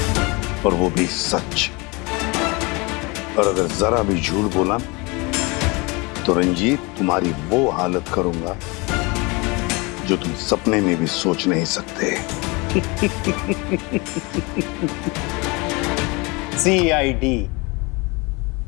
और वो भी सच। और अगर जरा भी झूठ बोला तो रंजीत तुम्हारी वो हालत करूंगा जो तुम सपने में भी सोच नहीं सकते। CID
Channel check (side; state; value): right; quieter; 27.0 dB